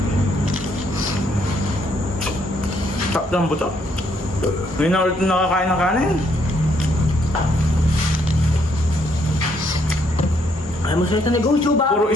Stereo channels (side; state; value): both; normal; correlation 0.71